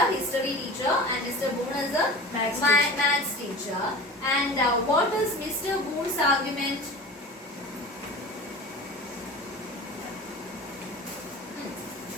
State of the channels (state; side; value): normal; both; correlation 0.35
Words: history teacher and Mr. Boone is a Maths teacher. maths teacher. And what is Mr. Boone's argument?